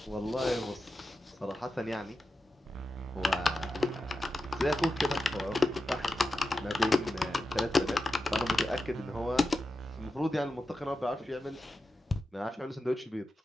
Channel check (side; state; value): both; normal; correlation 0.91